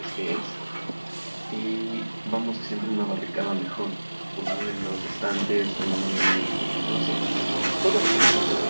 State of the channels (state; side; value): inverted; both; correlation -1.00